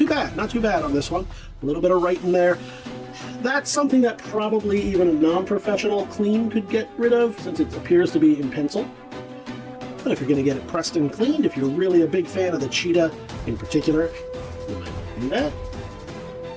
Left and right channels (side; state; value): both; identical; correlation 1.00